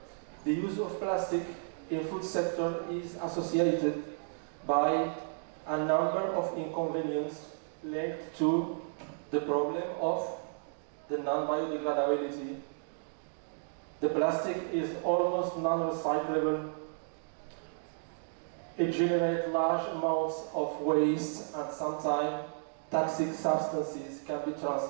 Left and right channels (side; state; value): left; silent; digital silence